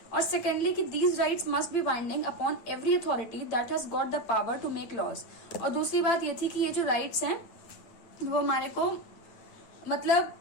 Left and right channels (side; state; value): right; late; 8.8 ms